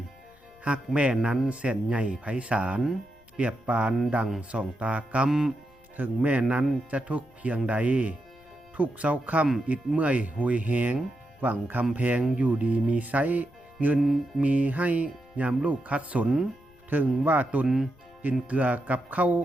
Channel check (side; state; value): left; noise; rumble, 29 dB below the sound